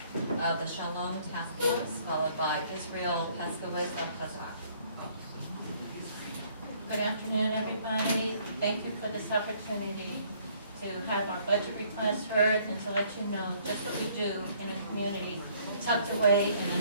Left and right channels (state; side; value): inverted; both; correlation -0.62